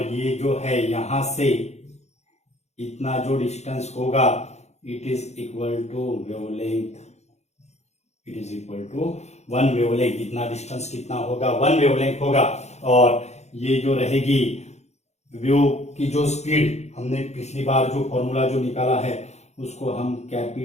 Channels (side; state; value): right; late; 0.32 ms